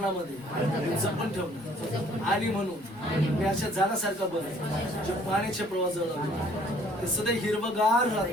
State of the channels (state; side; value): normal; both; correlation 0.58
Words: जपून ठेवणार. आणि म्हणून मी अशा झाडासारखा बनतो जे पाण्याच्या प्रवाहाजवळ लावतो. ते सदैव हिरवगार